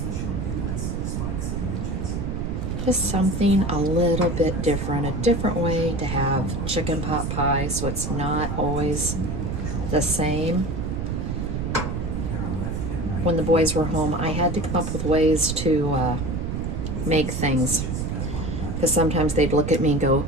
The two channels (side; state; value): right; noise; rumble, 3 dB below the sound